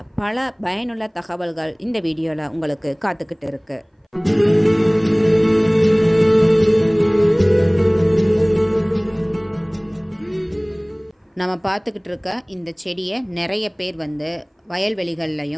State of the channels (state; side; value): identical; both; correlation 1.00